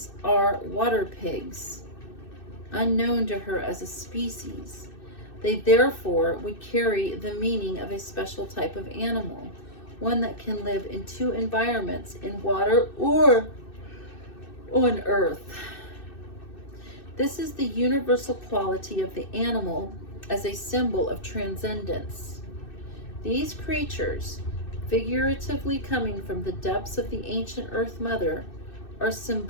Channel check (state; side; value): late; right; 2.6 ms